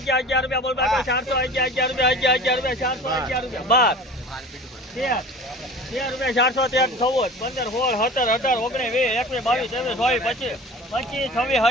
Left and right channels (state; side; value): normal; both; correlation 0.39